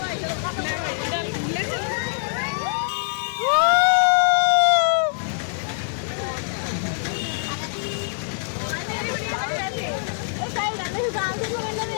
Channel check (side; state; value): right; silent; digital silence